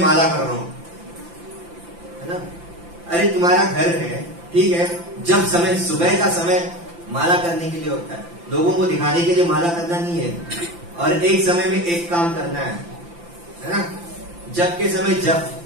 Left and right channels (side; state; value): left; late; 5.8 ms